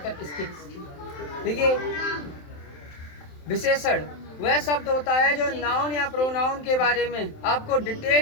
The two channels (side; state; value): right; late; 27 ms